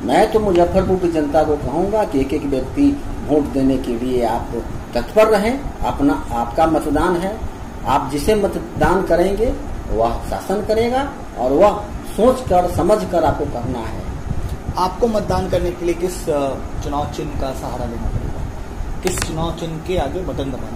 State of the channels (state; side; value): identical; both; correlation 1.00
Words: मैं तो मुजफ्फरपुर की जनता को कहूंगा कि एक एक व्यक्ति वोट देने के लिए आप तत्पर रहें। अपना आपका मतदान है, आप जिसे मतदान करेंगे वह शासन करेगा और वह सोचकर समझकर आपको करना है। आपको मतदान करने के लिए किस चुनाव चिन्ह का सहारा लेना पड़ेगा, किस चुनाव चिन्ह के आगे बटन